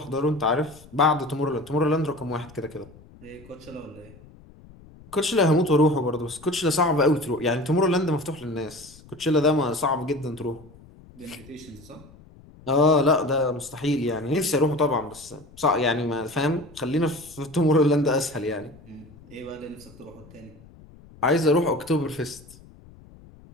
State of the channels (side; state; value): left; noise; rumble, 23 dB below the sound